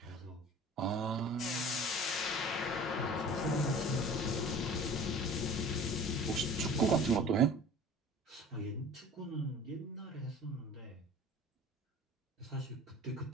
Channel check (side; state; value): both; normal; correlation 0.43